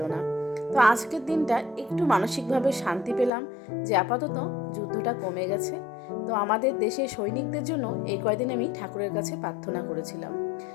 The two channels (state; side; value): drops out; right; at 3.3 s